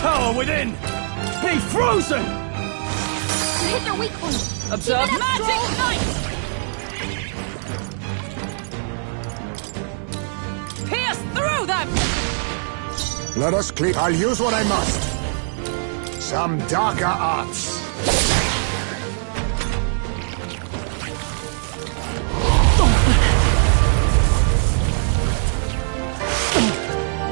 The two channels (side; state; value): left; silent; 59 dB below the other